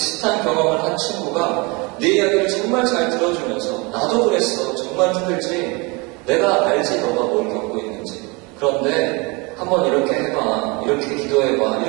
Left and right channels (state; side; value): quieter; left; 27.8 dB